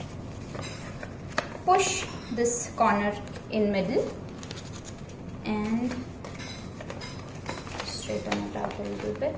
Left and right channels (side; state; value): both; identical; correlation 1.00